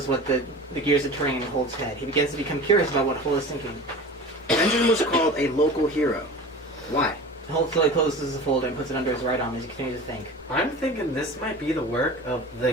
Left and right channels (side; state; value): both; normal; correlation 0.36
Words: what the gears are turning in Holt's head. He begins to become curious about what Holt is thinking. Benjamin was called a local hero. Why? Holt slowly closes the folder and puts it under his right arm as he continues to think. I'm thinking this might be the work of